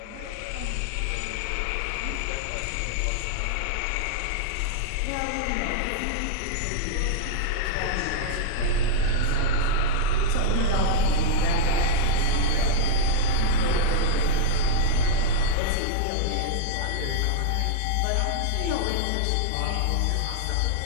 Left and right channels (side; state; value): both; different; correlation -0.01